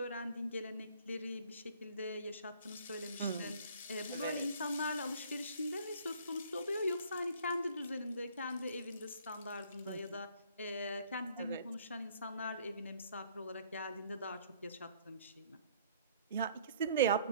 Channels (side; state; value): both; inverted; correlation -0.57